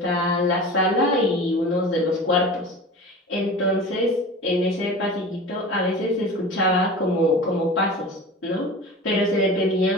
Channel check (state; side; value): normal; both; correlation 0.35